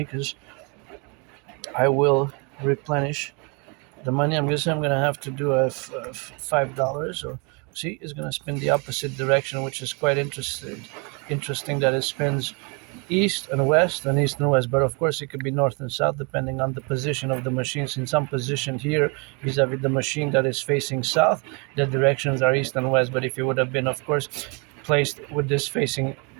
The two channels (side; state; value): left; quieter; 32.8 dB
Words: because I will replenish the money. I'm gonna have to do a $5. So see, it's gonna spin the opposite direction, which is quite interesting that it spins east and west and east and west, but of course it could be north and south depending on the position of the machine. Since I'm positioned here vis-a-vis the machine that is facing south, the directions are east and west. But if it would have been, of course, placed with this facing